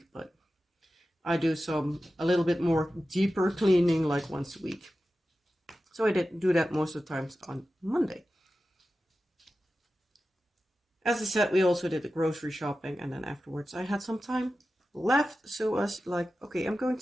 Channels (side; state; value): both; normal; correlation 0.94